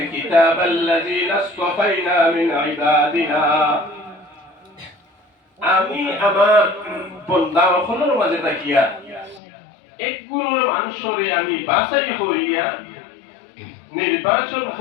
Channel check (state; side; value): drops out; right; at 9.4 s